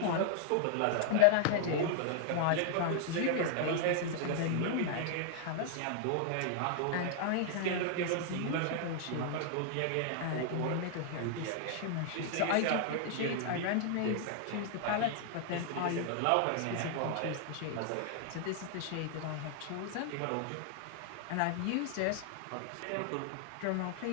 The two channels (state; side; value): different; both; correlation -0.01